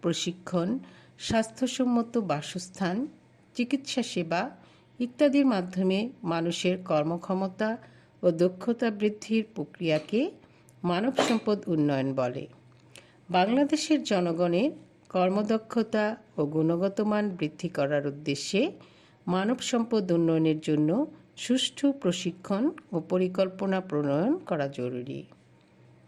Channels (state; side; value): identical; both; correlation 1.00